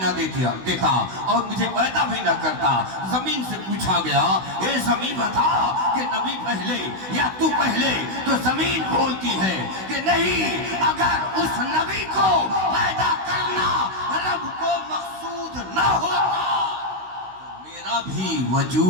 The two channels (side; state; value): left; late; 16 ms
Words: دیتا اور مجھے پیدا بھی نہ کرتا. زمین سے پوچھا گیا, اے زمین بتا کہ نبی پہلے یا تو پہلے, تو زمین بولتی ہے کہ نہیں, اگر اس نبی کو پیدا کرنا رب کو مقصود نہ ہوتا میرا بھی